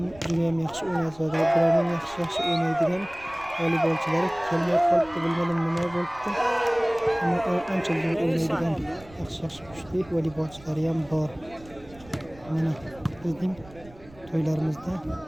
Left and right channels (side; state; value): right; noise; rumble, 22 dB below the sound